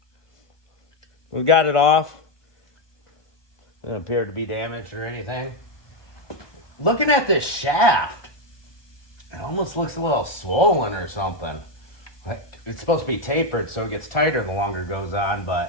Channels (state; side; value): late; right; 1.2 ms